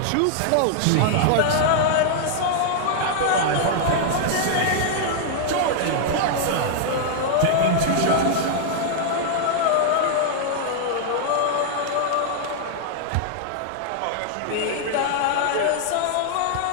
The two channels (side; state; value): both; different; correlation -0.01